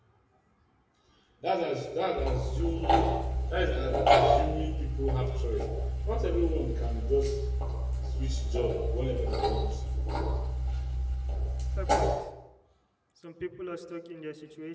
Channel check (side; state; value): both; identical; correlation 1.00